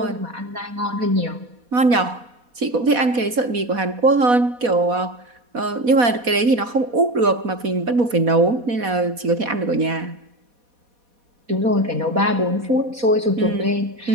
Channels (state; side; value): late; left; 4.1 ms